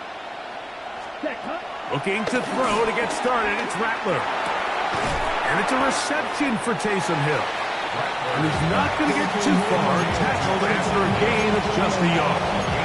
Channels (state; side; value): identical; both; correlation 1.00